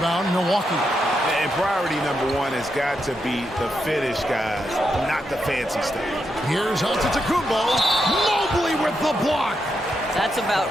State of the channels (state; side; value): normal; both; correlation 0.83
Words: Milwaukee. And priority number 1 has got to be the finish, guys, not the fancy stuff. Here's Antetokounmpo. Mobley with the block. That's about